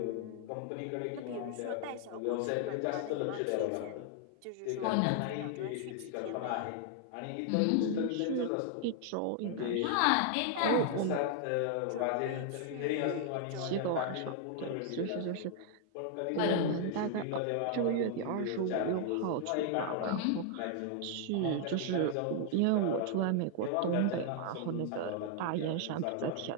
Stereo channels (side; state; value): both; different; correlation 0.00